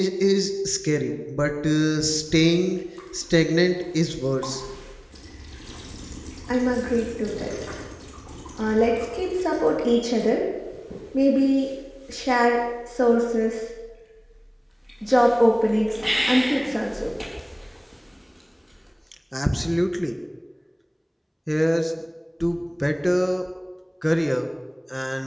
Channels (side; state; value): both; identical; correlation 1.00